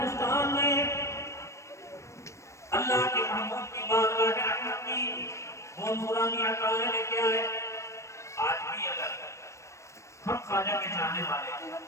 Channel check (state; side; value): late; right; 0.14 ms